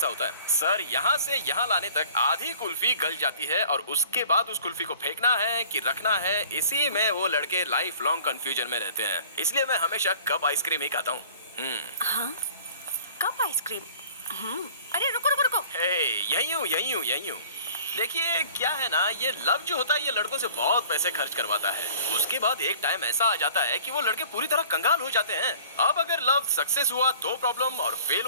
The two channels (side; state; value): both; inverted; correlation -0.49